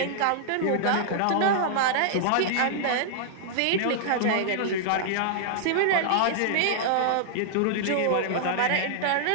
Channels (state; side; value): different; both; correlation -0.01